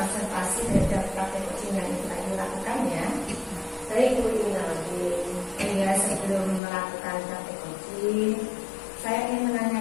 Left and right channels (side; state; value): right; drops out; at 6.6 s